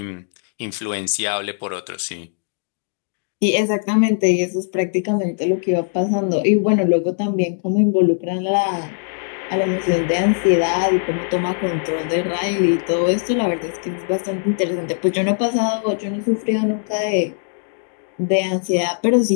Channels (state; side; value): silent; right; digital silence